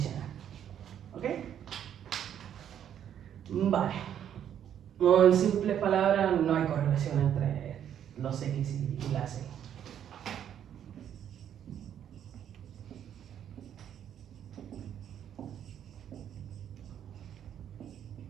¿Ok? Vale. No, en simples palabras, no hay correlación entre los X y las Y.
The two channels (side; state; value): left; quieter; 9.7 dB